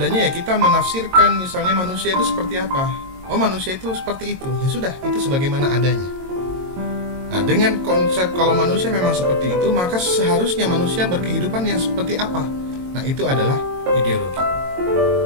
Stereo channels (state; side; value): late; left; 22 ms